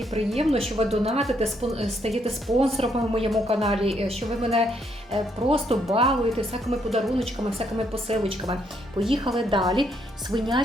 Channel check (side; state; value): both; normal; correlation 0.73